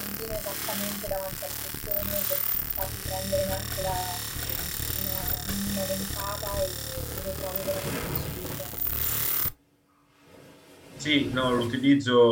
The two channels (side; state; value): both; identical; correlation 1.00